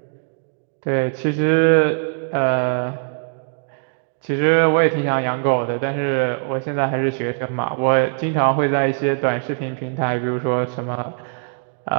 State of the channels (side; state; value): left; silent; 65 dB below the other